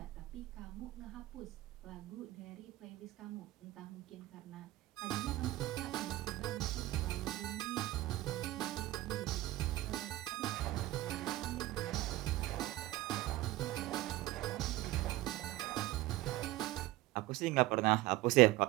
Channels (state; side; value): quieter; left; 17.0 dB